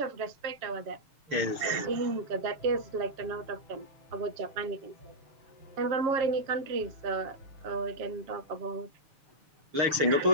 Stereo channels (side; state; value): left; late; 6.6 ms